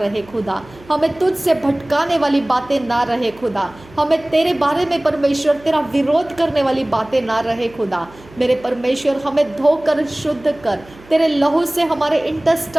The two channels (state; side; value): noise; right; hum, 23 dB below the sound